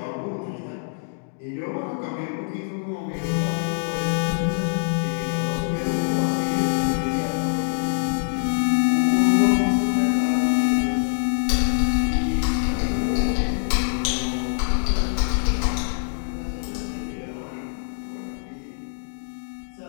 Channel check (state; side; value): silent; right; digital silence